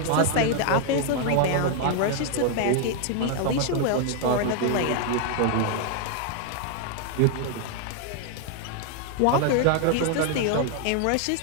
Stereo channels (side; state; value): both; different; correlation 0.00